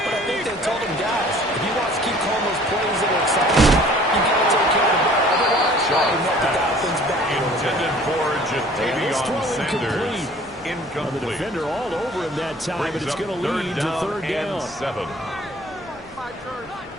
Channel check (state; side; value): normal; both; correlation 0.51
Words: I think they told him, guys, if he wants to keep calling throw incomplete. Incomplete. The defender all over him that time, but it's going to lead to third down. 7.